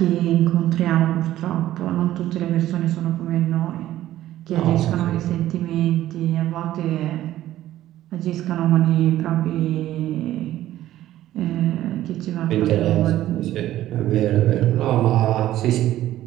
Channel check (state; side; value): quieter; left; 13.7 dB